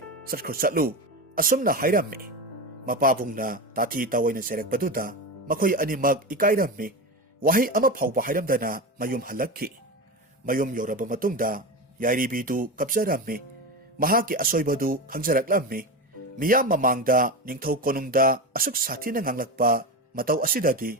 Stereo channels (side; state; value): both; normal; correlation 0.21